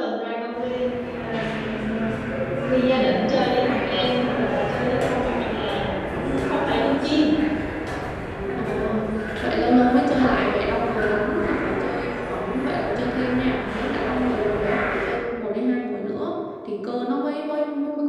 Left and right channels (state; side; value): identical; both; correlation 1.00